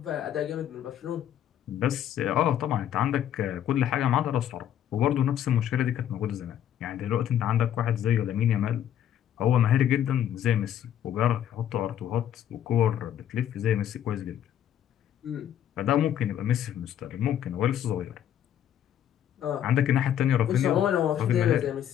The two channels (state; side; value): quieter; right; 10.4 dB